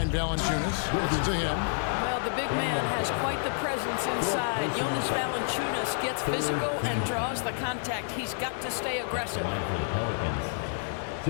Valanciunas. It's to him. Well, the big man has quite the presence inside. Jonas Valanciunas gets physical and draws the contact. He's got to stay aggressive. Line for the Pelicans.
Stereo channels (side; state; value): right; silent; 58 dB below the other